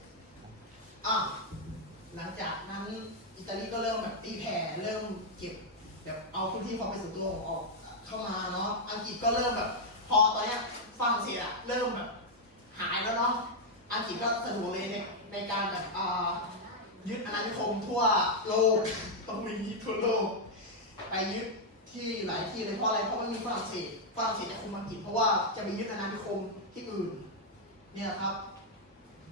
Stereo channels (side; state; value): both; normal; correlation -0.02